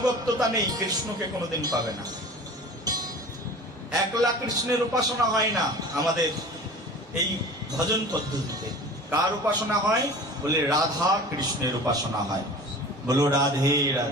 নেই, কৃষ্ণকে কোনোদিন পাবে না। একলা কৃষ্ণের উপাসনা হয় না আমাদের এই ভজন পদ্ধতিতে। কার উপাসনা হয়? বলে রাধা কৃষ্ণের উপাসনা হয়। বলো রাধে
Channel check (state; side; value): normal; both; correlation 0.39